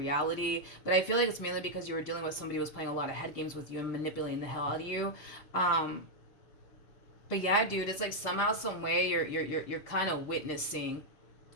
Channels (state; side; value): late; right; 6.6 ms